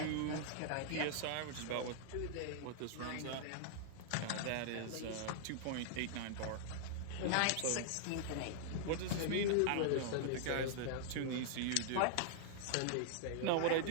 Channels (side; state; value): both; different; correlation -0.01